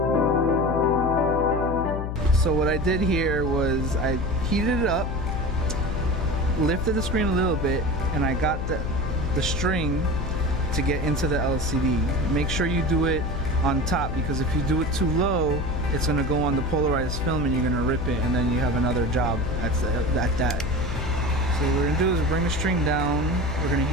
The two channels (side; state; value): left; noise; hum, 3 dB below the sound